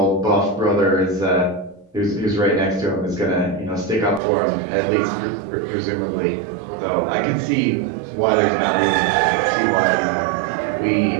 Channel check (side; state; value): left; drops out; at 4.2 s